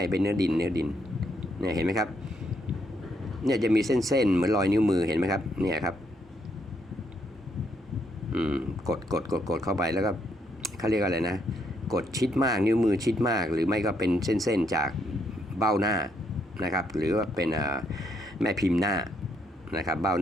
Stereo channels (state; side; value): normal; both; correlation 0.74